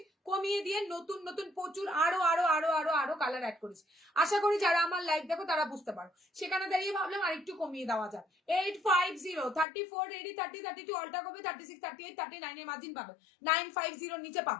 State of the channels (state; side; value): drops out; right; at 9.7 s